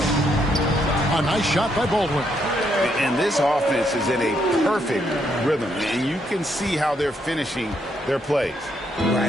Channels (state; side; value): normal; both; correlation 0.75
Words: A nice shot by Baldwin. And this offense is in a perfect rhythm. And you can see how they're finishing their plays.